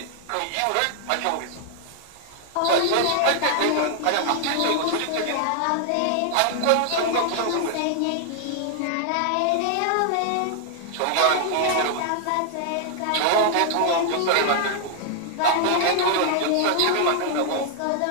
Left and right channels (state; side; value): different; both; correlation 0.00